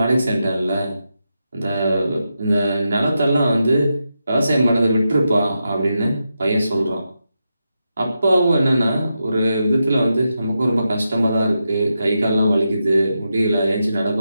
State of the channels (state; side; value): inverted; both; correlation -0.87